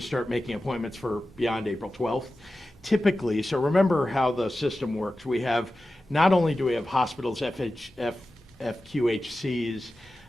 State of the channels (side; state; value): both; normal; correlation 0.94